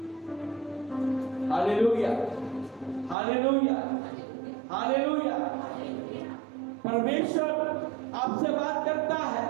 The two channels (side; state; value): left; drops out; at 3.2 s